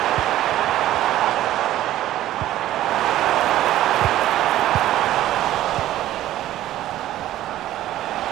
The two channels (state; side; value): quieter; left; 13.7 dB